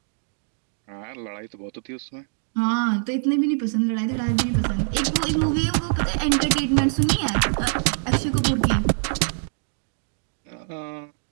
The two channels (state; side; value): silent; left; digital silence